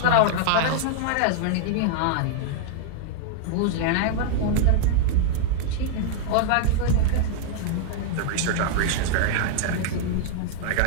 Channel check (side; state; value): both; different; correlation -0.01